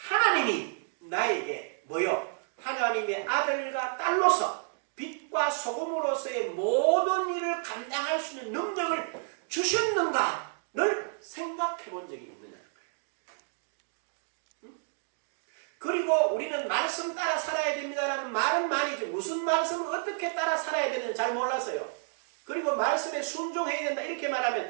나에게 뭐요? 하나님의 아들과 딸로서 빛과 소금으로서의 모든 일을 감당할 수 있는 능력을 주셨는가를 생각해 본 적이 있느냐. 그리고 우리는 말씀 따라 살아야 됩니다라는 말은 많이 듣고 무슨 말씀을 어떻게 따라 살아야 되는지 잘 몰랐어요. 그리고 말씀에 순종해야 된다 이렇게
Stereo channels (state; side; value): silent; left; digital silence